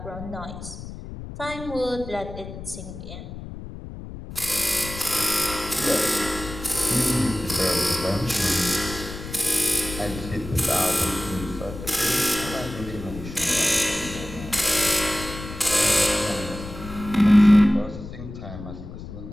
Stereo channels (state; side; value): noise; left; rumble, 11 dB below the sound